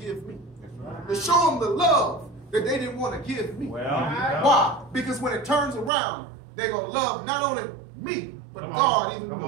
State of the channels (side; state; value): left; drops out; at 5.9 s